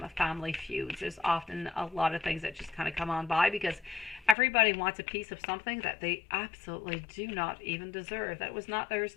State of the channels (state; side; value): drops out; right; at 4.4 s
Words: family feuds. There's often a lot of things that just kind of come on by because everybody wants a piece of something that they absolutely do not even deserve. That was not theirs